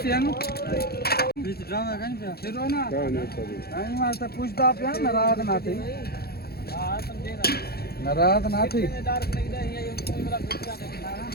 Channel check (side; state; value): right; late; 0.46 ms